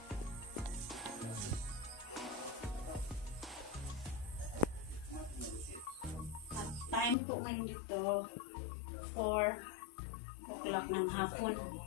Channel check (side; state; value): right; drops out; at 7.2 s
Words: At time po ngayon dito 4 o'clock ng hapon.